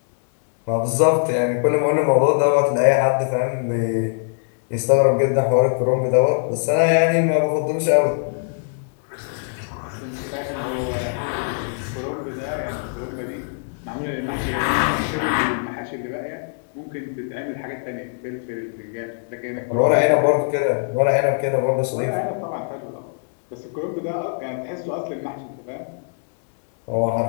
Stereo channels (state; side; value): silent; right; digital silence